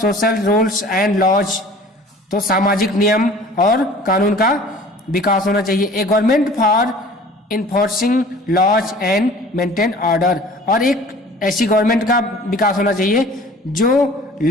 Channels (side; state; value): both; normal; correlation 0.47